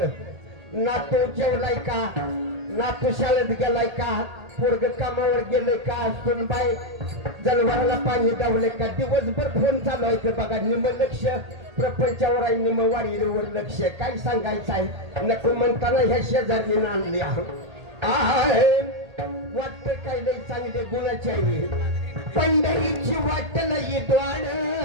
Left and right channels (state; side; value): late; left; 1.8 ms